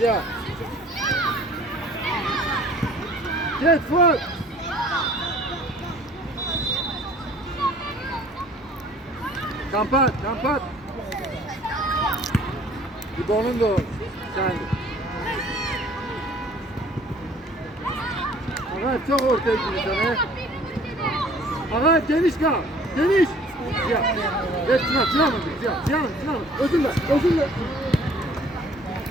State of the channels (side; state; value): both; normal; correlation 0.53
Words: Git Fuat. Kampat. İbo'nun da o. Sen. Ağay çok ortaya gidiyorsun he. Ağay geniş kal. Geniş. Ya. Evet Sinan. Özürle.